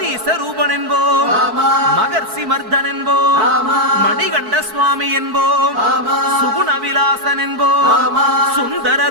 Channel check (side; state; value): left; late; 4.6 ms